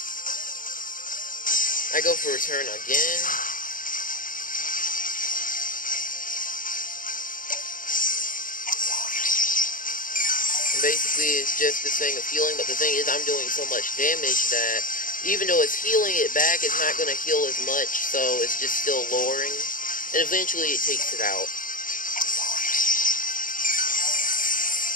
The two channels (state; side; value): late; right; 0.39 ms